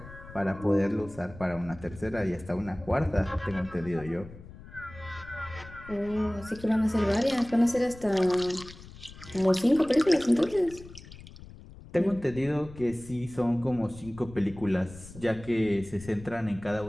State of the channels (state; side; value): noise; left; rumble, 17 dB below the sound